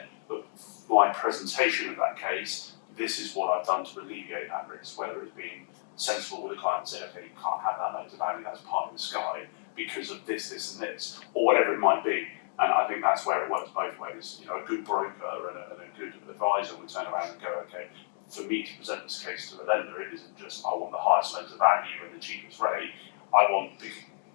but my presentation of that case, this is what I've done to alleviate that risk, whether it's being sensible with the client and saying, okay, you can't have that loan to value, that's part of the sky because of this, and this, or whatever it might be. And I think that's where it works both ways. A good broker and a good advisor would turn around and go, okay, for me to present this case to a lender, it isn't just I want the highest loan to value and the cheapest rate. I want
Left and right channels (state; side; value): silent; right; digital silence